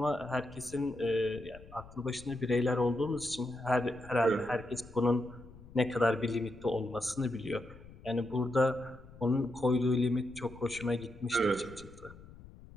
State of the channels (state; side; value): noise; left; rumble, 19 dB below the sound